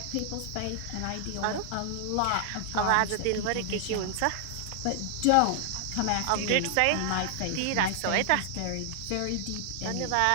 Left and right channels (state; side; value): different; both; correlation 0.00